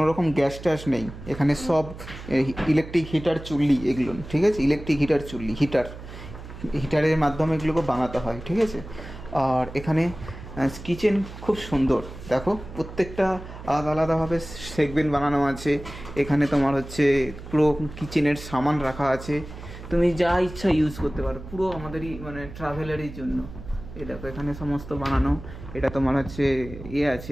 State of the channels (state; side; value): noise; right; hum, 13 dB below the sound